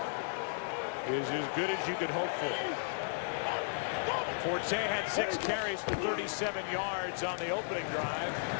is as good as you could hope for. Forte had 6 carries for 37 yards on the opening drive.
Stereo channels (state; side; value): silent; right; 55 dB below the other